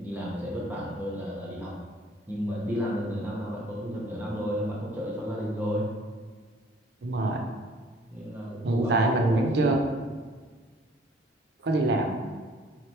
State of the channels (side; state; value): both; normal; correlation 0.57